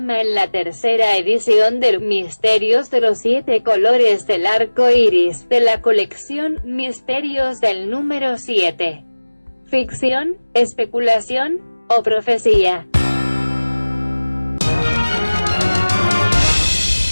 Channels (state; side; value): inverted; both; correlation -1.00